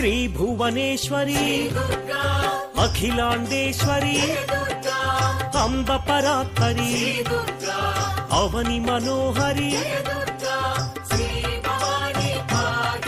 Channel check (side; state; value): both; identical; correlation 1.00